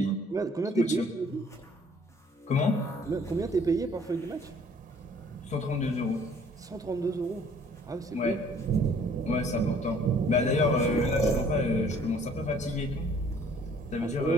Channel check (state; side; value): normal; both; correlation 0.57